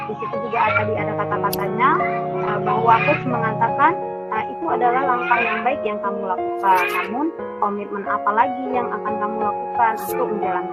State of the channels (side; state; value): both; identical; correlation 1.00